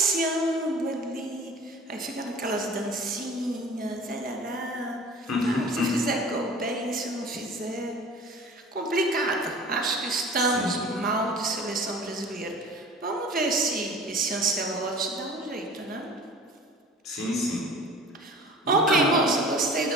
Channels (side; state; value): both; normal; correlation 0.43